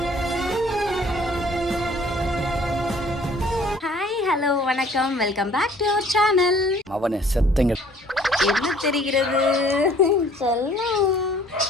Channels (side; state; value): both; normal; correlation 0.56